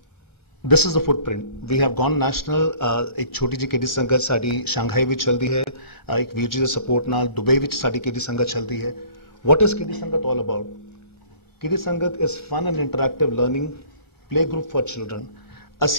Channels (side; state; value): left; late; 1.3 ms